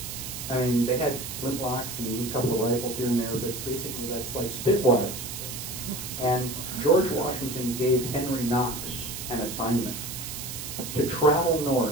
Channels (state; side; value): noise; right; hiss, 8 dB below the sound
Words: I mean, they had flintlocks and a couple of rifles here and there, but basically that's like spitwads. And George Washington gave Henry Knox an assignment to travel